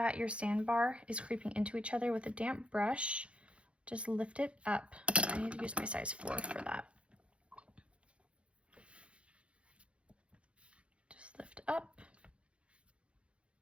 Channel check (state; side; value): late; left; 0.060 ms